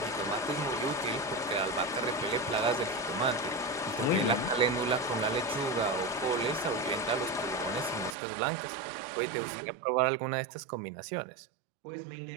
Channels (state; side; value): drops out; left; at 8.2 s